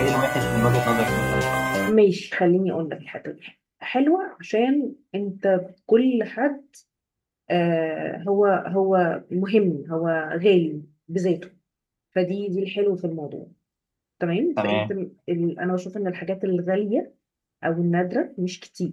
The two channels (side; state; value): both; identical; correlation 1.00